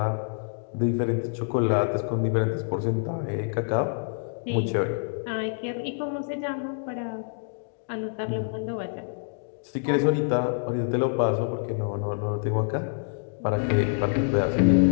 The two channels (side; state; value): right; silent; digital silence